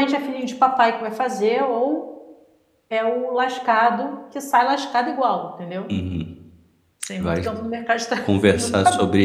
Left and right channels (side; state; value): both; identical; correlation 1.00